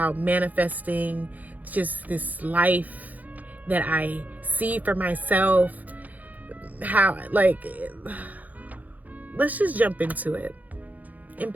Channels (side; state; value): left; late; 0.079 ms